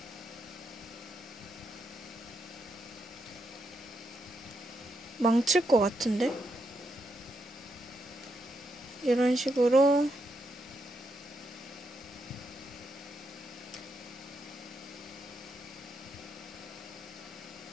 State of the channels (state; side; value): normal; both; correlation 0.81